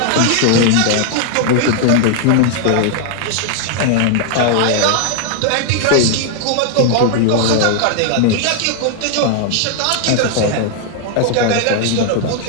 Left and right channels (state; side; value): different; both; correlation 0.00